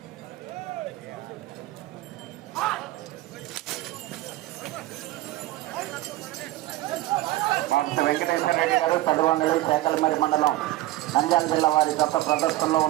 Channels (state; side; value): quieter; left; 16.9 dB